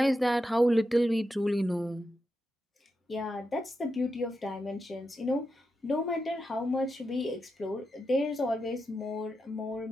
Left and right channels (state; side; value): normal; both; correlation 0.88